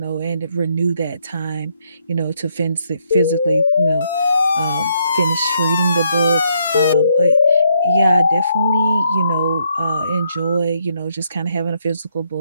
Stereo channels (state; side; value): inverted; both; correlation -0.74